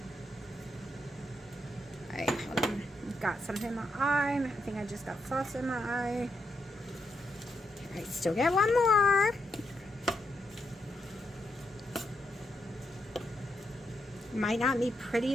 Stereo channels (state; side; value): normal; both; correlation 0.81